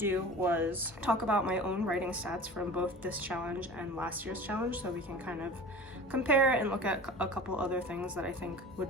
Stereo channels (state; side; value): normal; both; correlation 0.38